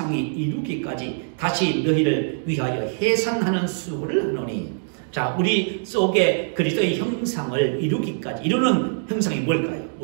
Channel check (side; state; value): left; silent; digital silence